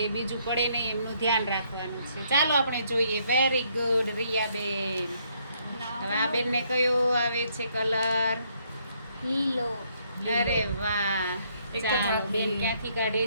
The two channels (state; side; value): inverted; both; correlation -0.70